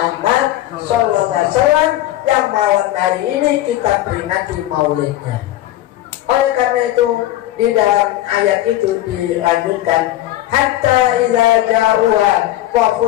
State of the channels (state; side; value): quieter; right; 14.5 dB